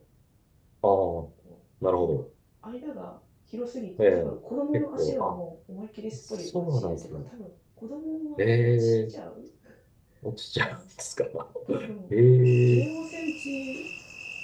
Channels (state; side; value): identical; both; correlation 1.00